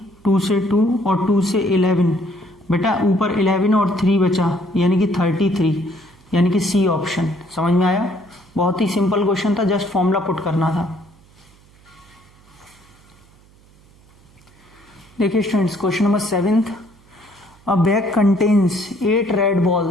2 से 2 और 2 से 11। बेटा ऊपर 11 और 3 बचा यानी कि 33, यानी कि सी ऑप्शन। समझ में आया, बहुत ही सिंपल क्वेश्चन था, जस्ट फॉर्मूला पुट करना था। देखिए students question number 7th, a bag contains 8 red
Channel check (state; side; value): noise; right; hum, 28 dB below the sound